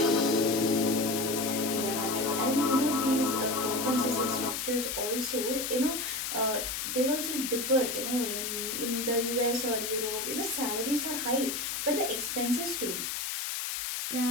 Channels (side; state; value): left; noise; hiss, 3 dB below the sound